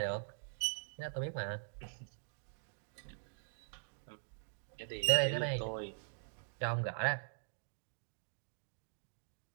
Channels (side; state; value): left; silent; digital silence